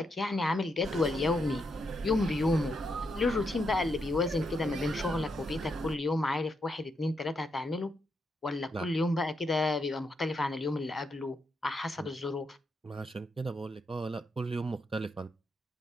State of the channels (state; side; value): normal; both; correlation 0.81